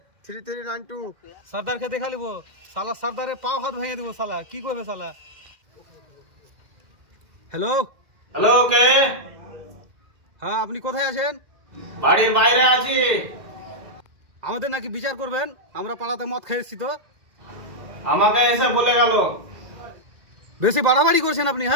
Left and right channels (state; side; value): late; left; 2.1 ms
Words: সর্দারকে দেখা লিব, সালা সর্দারে পাও হাত ভেঙে দিব। সালা কি করবে সালা? হ্যালো হ্যালো, কে? হ্যাঁ, আপনি কোথায় আছেন? বাড়ির বাইরে আছি। আমাদের নাকি বিচার করবেন, আমরা পাড়াতে মদ খেয়েছি তো। আমাকে এসে বলে গেল। বেশি বাড়াবাড়ি করছেন আপনি।